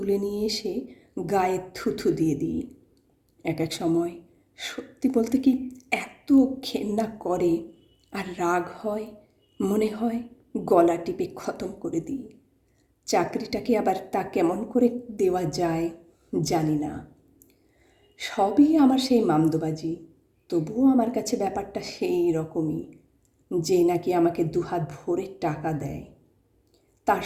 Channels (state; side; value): identical; both; correlation 1.00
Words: নিয়ে এসে গায়ে থুথু দিয়ে দিই। এক এক সময় সত্যি বলতে কি এত ঘেন্না করে আর রাগ হয়, মনে হয় গলা টিপে খতম করে দিই। চাকরিটাকে আবার তা কেমন করে দেওয়া যায় জানি না। সবই আমার সেই মামদোবাজি, তবুও আমার কাছে ব্যাপারটা সেই রকমই, যে নাকি আমাকে দুহাত ভরে টাকা দেয়, তার